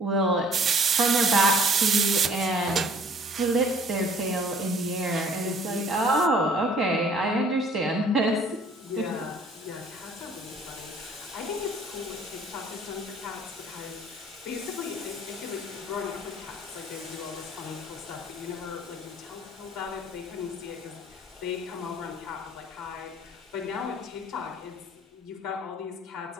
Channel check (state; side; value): normal; both; correlation 0.55